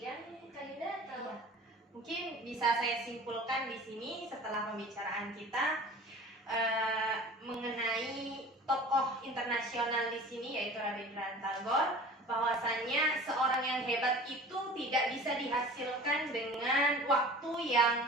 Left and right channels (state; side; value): normal; both; correlation 0.41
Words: Kak Yunda. Mungkin bisa saya simpulkan di sini setelah pembicaraan kita mengenai tokoh internasional di sini yaitu Rabindranath Tagore, bahwasannya seorang yang hebat itu tidak bisa dihasilkan dengan waktu